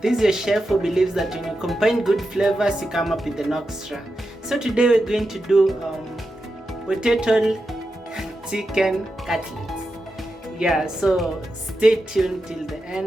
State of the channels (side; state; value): both; normal; correlation 0.89